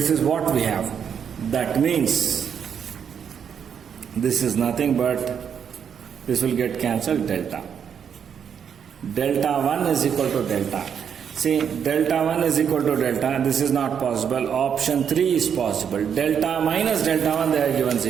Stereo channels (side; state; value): left; quieter; 7.7 dB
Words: is what we have. That means this is nothing but this will get cancelled, delta. Delta 1 is equal to delta. See, delta 1 is equal to delta. This is not possible. Option 3 is possible. Delta minus delta 1, they are given